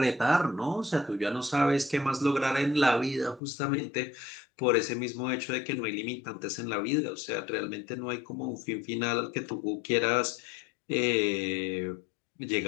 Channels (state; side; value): drops out; right; at 3.4 s